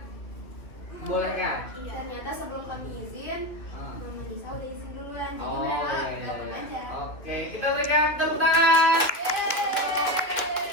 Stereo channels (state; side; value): late; right; 2.2 ms